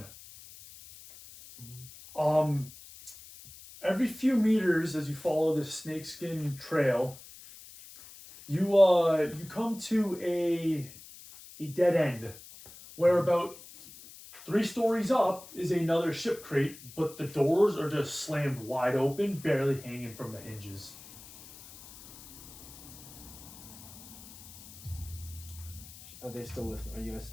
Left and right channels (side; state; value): left; noise; hiss, 18 dB below the sound